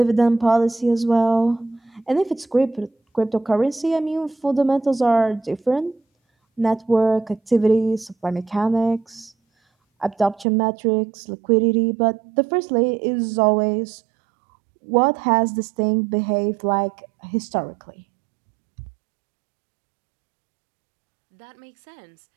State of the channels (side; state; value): left; drops out; at 10.5 s